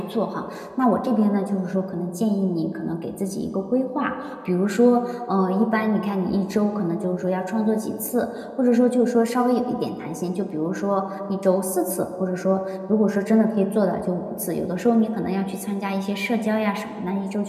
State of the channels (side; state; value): both; identical; correlation 1.00